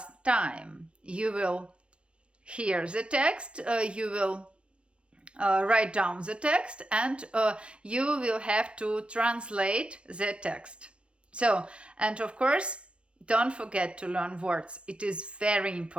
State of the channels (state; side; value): late; left; 0.059 ms